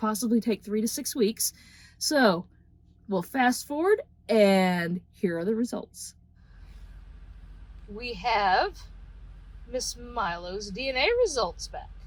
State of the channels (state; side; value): identical; both; correlation 1.00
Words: take 3 to 6 weeks. So we'll fast forward, and here are the results. We have Miss Milo's DNA results back.